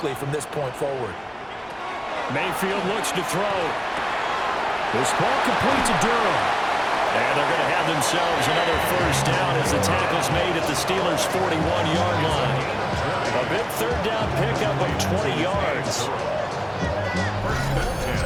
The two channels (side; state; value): both; identical; correlation 1.00